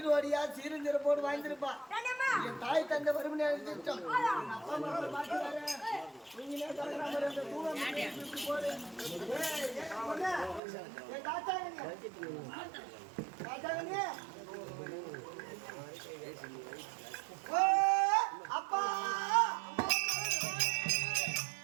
சீருந்திருப்போடு வாழ்ந்திருப்பா. என் தாய் தந்தை வருமனே எழுதிட்டோம். அப்பா அம்மா பாக்குறாரு. நீங்களே சொல்றாங்க அந்த தூரம் போடு. ஏய் தாத்தாங்க. தாத்தாங்க. ஓ அப்பா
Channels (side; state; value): left; drops out; at 10.6 s